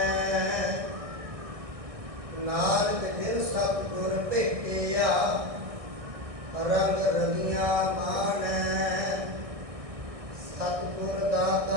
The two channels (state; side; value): late; left; 1.6 ms